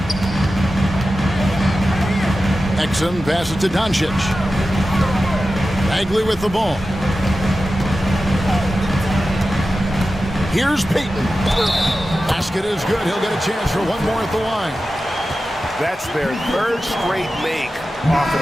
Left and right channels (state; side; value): normal; both; correlation 0.93